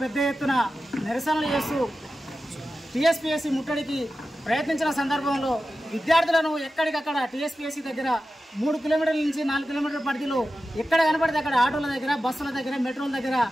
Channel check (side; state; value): both; normal; correlation 0.93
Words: పెద్ద ఎత్తున నిరసనలు చేస్తూ టీఎస్పీఎస్సీ ముట్టడికి ప్రయత్నించిన సందర్భంలో విద్యార్థులను ఎక్కడికక్కడ టీఎస్పీఎస్సీ దగ్గర 3 కిలోమీటర్ల నుంచి 4 కిలోమీటర్ల పరిధిలో ఎక్కడ కనపడితే అక్కడ ఆటోల దగ్గర బస్సుల దగ్గర మెట్రోల దగ్గర